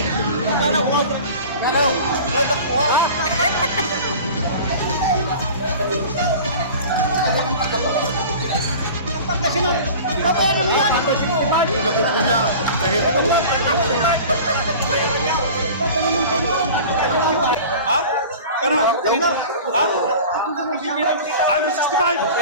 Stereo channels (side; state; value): both; inverted; correlation -0.39